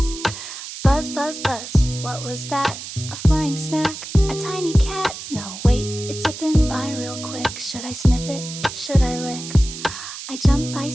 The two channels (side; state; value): right; noise; hiss, 10 dB below the sound